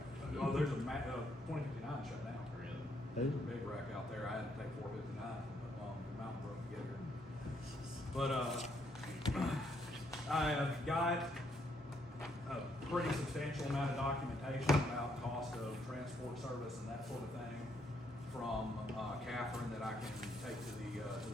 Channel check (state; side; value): normal; both; correlation 0.73